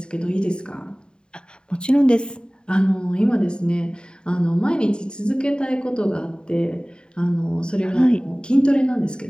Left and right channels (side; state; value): right; late; 0.049 ms